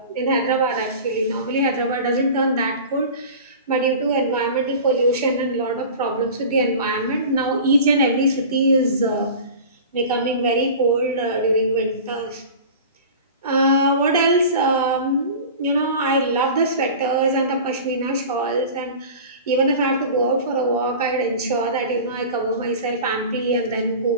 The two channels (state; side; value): inverted; both; correlation -0.36